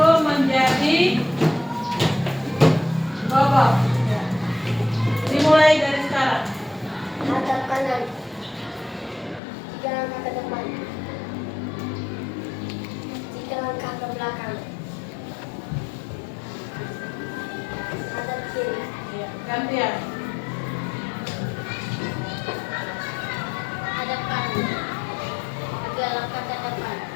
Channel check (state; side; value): drops out; right; at 9.4 s